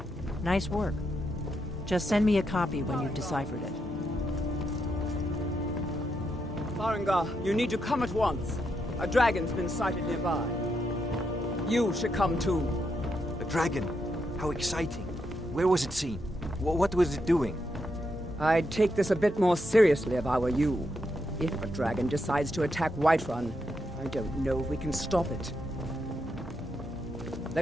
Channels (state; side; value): normal; both; correlation 0.81